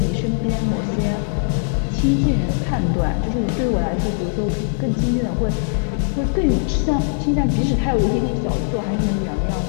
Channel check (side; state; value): right; silent; 66 dB below the other